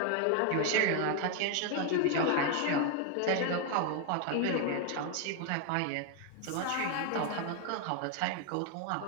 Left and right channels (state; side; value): different; both; correlation 0.01